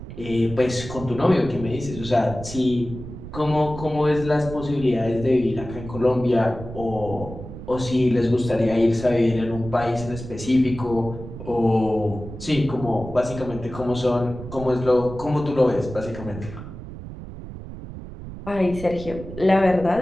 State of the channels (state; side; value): noise; right; rumble, 11 dB below the sound